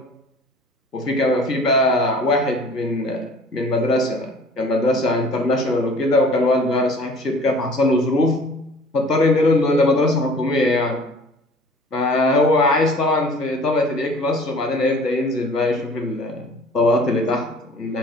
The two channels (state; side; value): normal; both; correlation 0.49